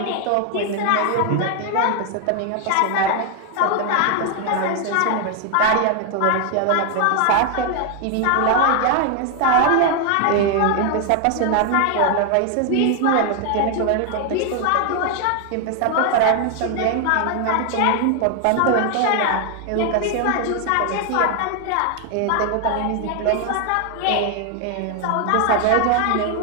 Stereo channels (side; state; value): both; different; correlation 0.00